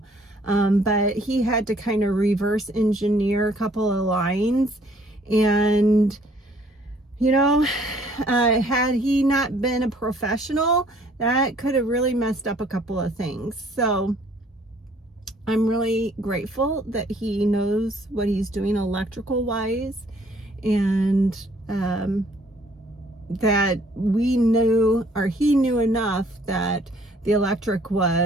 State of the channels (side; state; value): both; normal; correlation 0.61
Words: But he had to kind of reverse engineer a couple of lines, and you know, had he not been a professional, that could have really messed up a couple of things. So I'm really grateful that he knows what he's doing electrical wise, and that we knew, or he knew enough that the electric